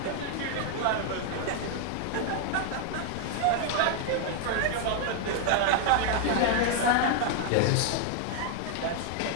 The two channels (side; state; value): both; different; correlation 0.00